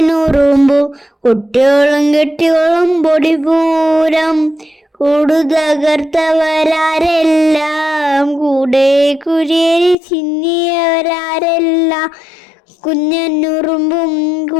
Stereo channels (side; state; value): right; drops out; at 10.0 s